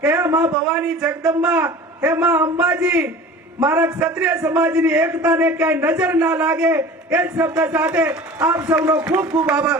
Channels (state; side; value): normal; both; correlation 0.40